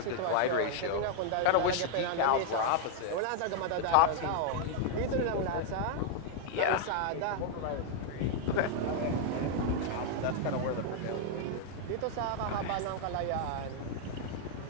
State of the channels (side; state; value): both; different; correlation 0.00